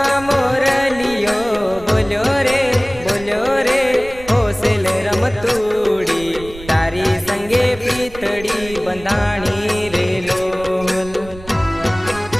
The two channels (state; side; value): noise; right; rumble, 17 dB below the sound